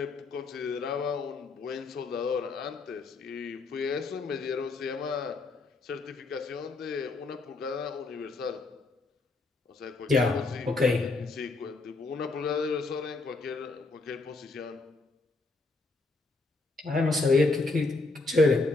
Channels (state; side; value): quieter; right; 3.5 dB